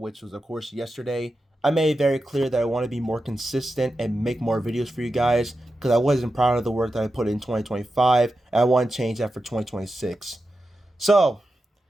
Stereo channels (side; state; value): both; normal; correlation 0.90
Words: was of course yesterday, I made it very clear that I want to be more consistent and make more videos for you guys because I wasn't proud of the work that I put in 2025 and I want to change that for 2026. So,